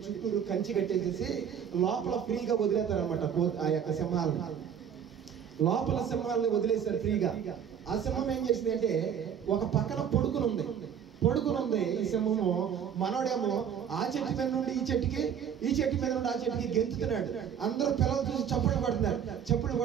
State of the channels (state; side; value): quieter; left; 8.3 dB